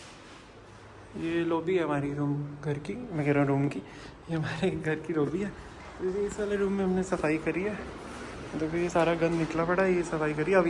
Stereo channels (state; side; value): identical; both; correlation 1.00